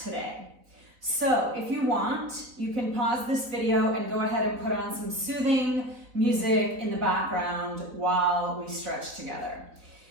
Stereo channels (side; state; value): left; late; 3.9 ms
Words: So if you want, you can pause this video and go ahead and put on some soothing music in the background while we stretch together.